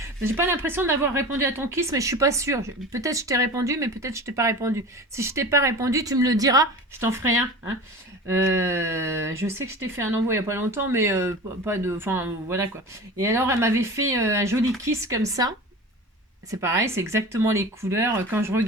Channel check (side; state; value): both; normal; correlation 0.34